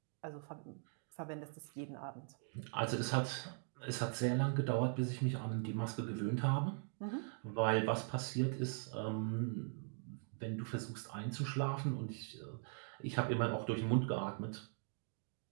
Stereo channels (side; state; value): left; silent; 50 dB below the other